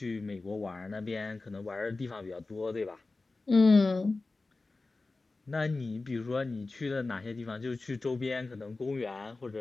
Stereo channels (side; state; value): right; quieter; 3.5 dB